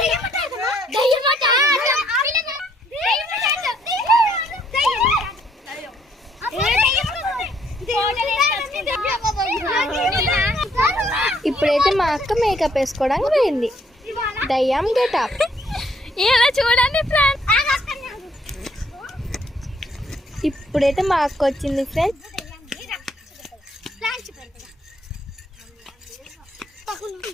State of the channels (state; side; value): normal; both; correlation 0.68